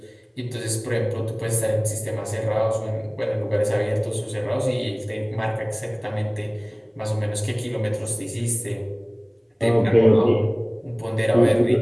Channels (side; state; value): both; identical; correlation 1.00